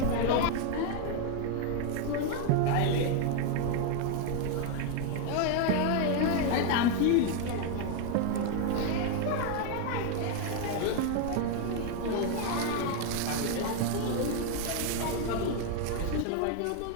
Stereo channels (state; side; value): different; both; correlation 0.01